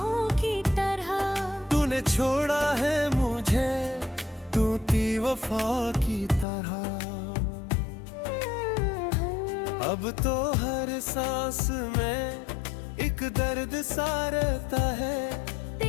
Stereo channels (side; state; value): right; drops out; at 6.5 s